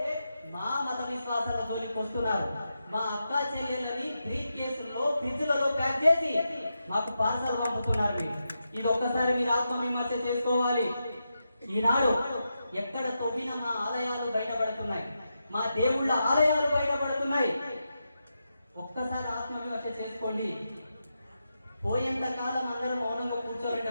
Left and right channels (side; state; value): both; inverted; correlation -0.87